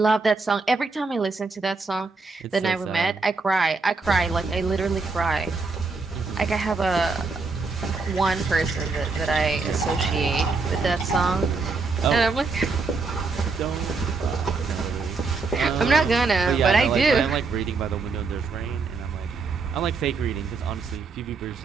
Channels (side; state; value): left; quieter; 4.2 dB